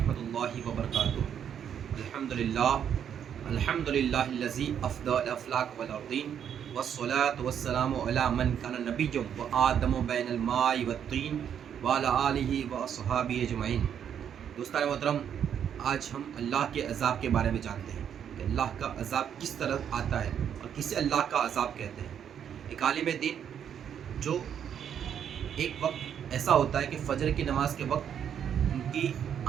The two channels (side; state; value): left; quieter; 8.7 dB